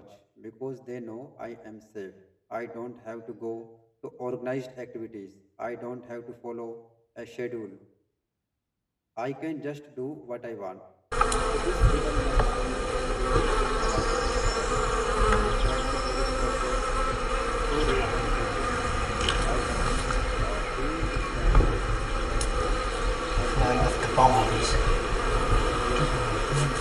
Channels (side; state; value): both; identical; correlation 1.00